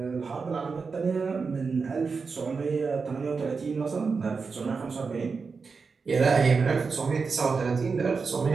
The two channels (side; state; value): left; quieter; 4.9 dB